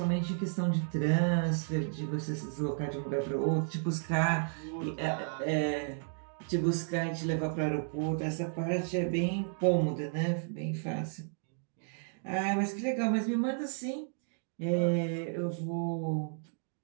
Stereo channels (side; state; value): left; silent; digital silence